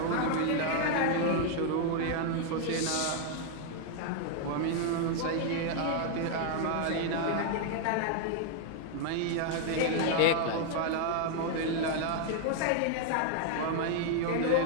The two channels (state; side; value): different; both; correlation 0.00